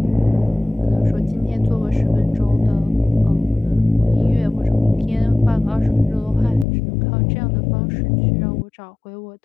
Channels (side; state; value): right; drops out; at 6.7 s